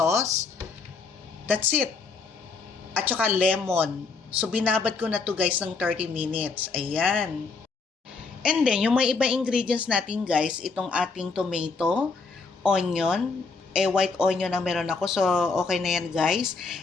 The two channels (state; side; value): quieter; right; 4.4 dB